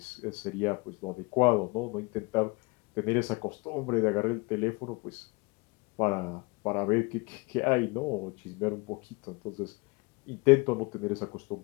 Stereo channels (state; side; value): quieter; right; 27.0 dB